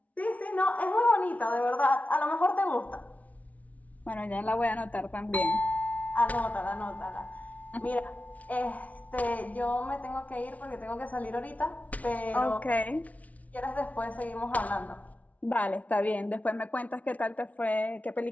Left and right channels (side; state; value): right; late; 0.069 ms